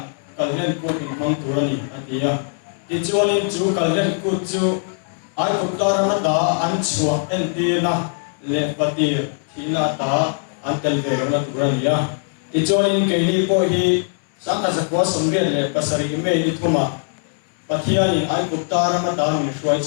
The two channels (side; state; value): right; silent; 65 dB below the other